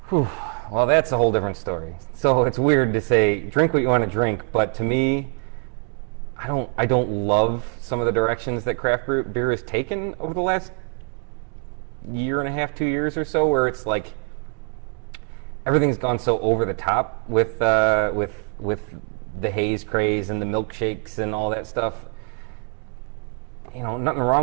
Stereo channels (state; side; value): quieter; left; 39.2 dB